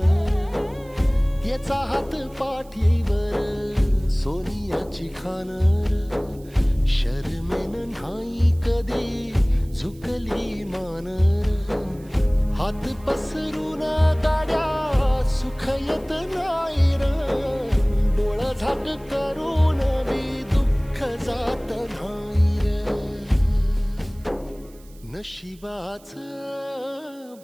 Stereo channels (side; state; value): right; noise; hiss, 27 dB below the sound